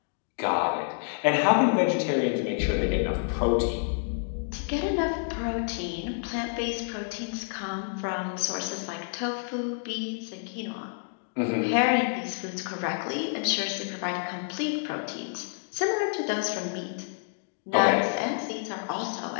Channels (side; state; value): right; silent; digital silence